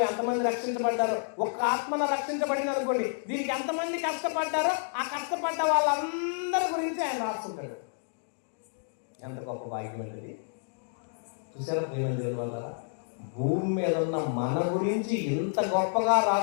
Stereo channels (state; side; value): silent; right; digital silence